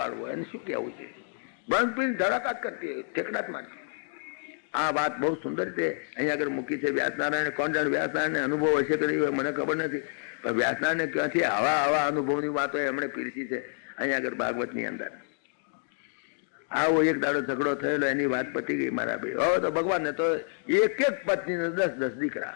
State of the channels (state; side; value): silent; right; 59 dB below the other